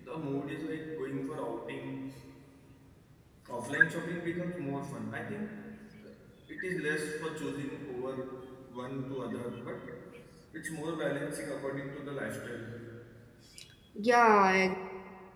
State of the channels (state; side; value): identical; both; correlation 1.00